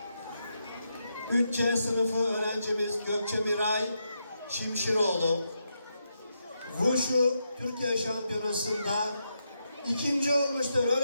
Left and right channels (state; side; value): inverted; both; correlation -0.83